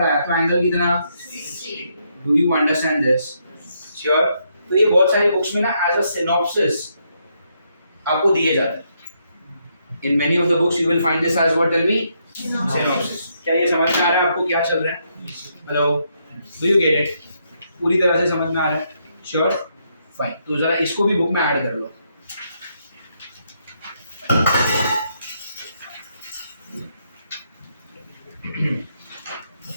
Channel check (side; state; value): both; inverted; correlation -0.76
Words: आया तो एंगल कितना, do you understand this? Sure? तो ये बहुत सारी बुक्स में ना एज अ सिनॉप्सिस आपको दिए जाते हैं। In many of the books you will find this as what, tell me, synopsis. क्या ये समझ में आ रहा है आपको क्या चल रहा है? Hello, do you get it? पूरी तरह से समझ में आ रहा है? श्योर? फाइन, तो जरा इसको भी बुक में ऐड कर लो।